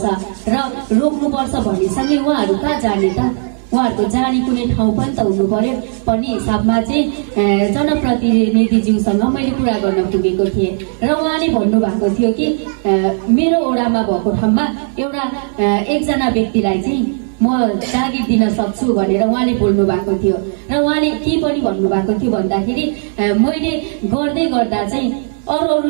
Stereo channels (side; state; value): left; silent; 58 dB below the other